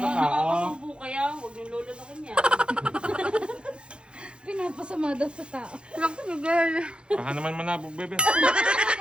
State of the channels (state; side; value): late; left; 0.055 ms